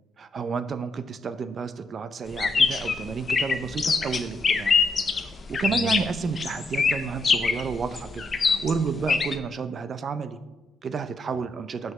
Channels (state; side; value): normal; both; correlation 0.79